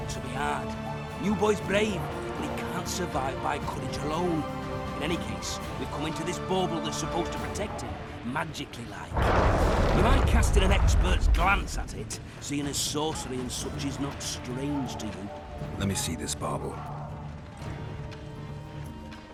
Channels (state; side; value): identical; both; correlation 1.00